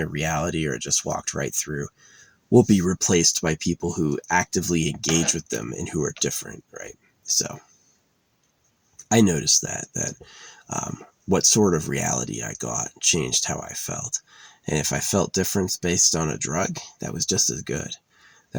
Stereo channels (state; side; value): identical; both; correlation 1.00